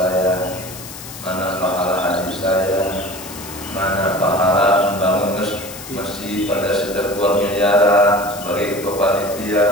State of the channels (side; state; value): left; noise; hiss, 13 dB below the sound